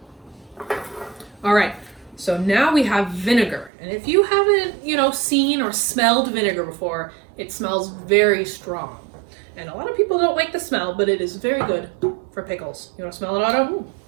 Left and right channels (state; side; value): drops out; left; at 3.7 s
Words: All right. So now we have vinegar. And if you haven't, seen or smelled vinegar before, it smells very strong. And a lot of people don't like the smell, but it is very good for pickles. You want to smell it, Otto?